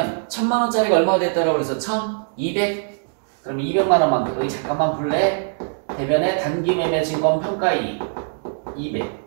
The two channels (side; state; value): left; silent; digital silence